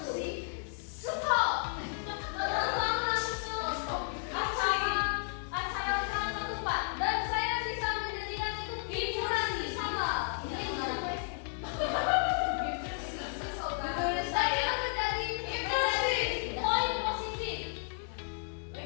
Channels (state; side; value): silent; right; 56 dB below the other